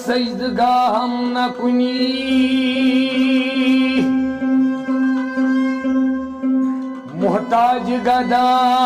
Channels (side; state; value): both; identical; correlation 1.00